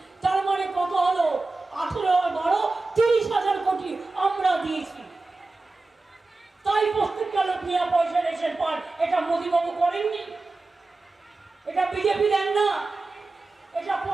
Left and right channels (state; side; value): quieter; left; 3.4 dB